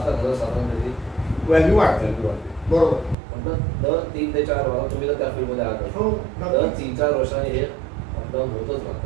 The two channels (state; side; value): drops out; left; at 3.2 s